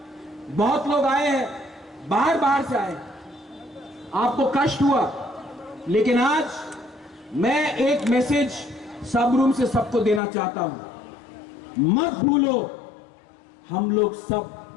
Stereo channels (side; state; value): right; drops out; at 10.2 s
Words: बहुत लोग आए हैं, बाहर से आए, आपको कष्ट हुआ, लेकिन आज मैं एक मैसेज सब रूम से सबको देना चाहता हूं। मत भूलो, हम लोग सब